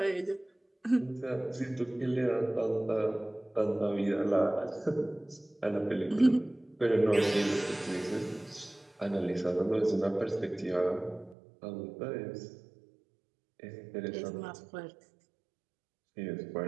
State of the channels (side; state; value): left; drops out; at 11.4 s